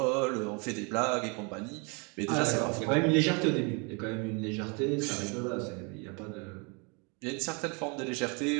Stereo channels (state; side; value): quieter; left; 32.3 dB